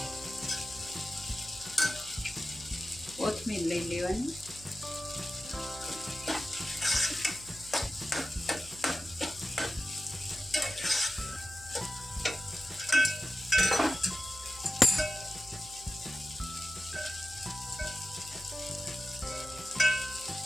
કોથમીર લઈ લેવાની,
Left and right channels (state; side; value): noise; right; hum, 19 dB below the sound